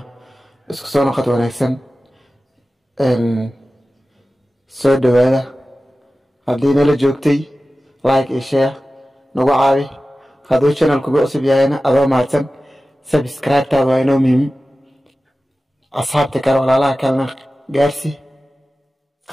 isku soo noqod wanaagsan soo dhawaada haddii nala joogtay like iyo share nagu caawi hadduu channel-ku cusub yahayna adoo mahadsan subscribe-taada waa inoo muhiim asxaabta kale walaalaha kalena gaarsi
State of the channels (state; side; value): normal; both; correlation 0.95